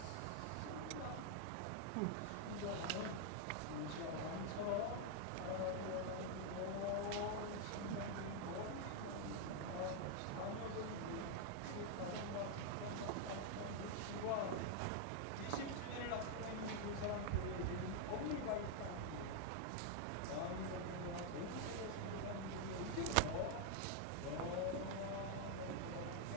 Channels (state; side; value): different; both; correlation 0.00